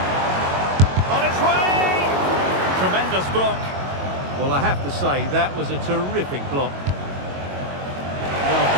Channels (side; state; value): left; late; 22 ms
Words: On its way! Tremendous block. Well, I have to say, that was a terrific block. Well,